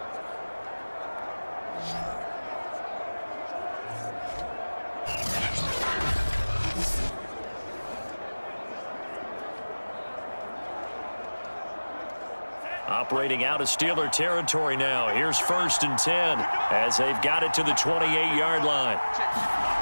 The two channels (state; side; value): inverted; both; correlation -1.00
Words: Operating out of Steeler territory now. Here's 1st and 10 as they've got it to the 28-yard line.